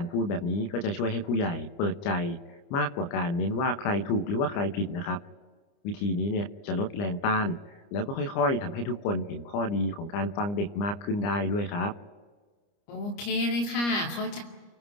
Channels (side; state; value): right; late; 29 ms